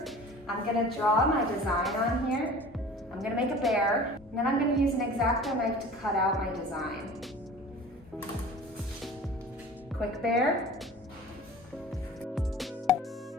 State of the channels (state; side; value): normal; both; correlation 0.41